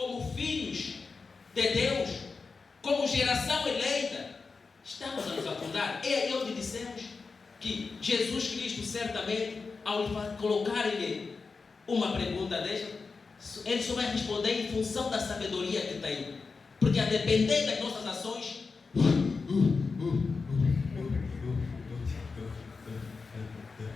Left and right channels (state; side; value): quieter; right; 4.6 dB